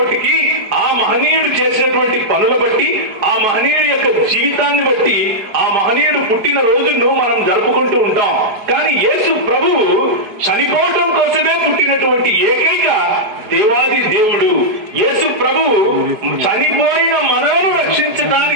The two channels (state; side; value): late; left; 4.6 ms